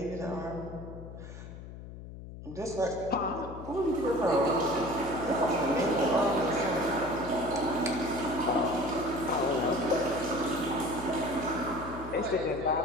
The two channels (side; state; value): left; noise; hum, 12 dB below the sound